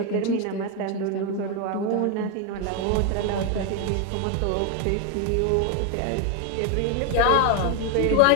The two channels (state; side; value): different; both; correlation 0.01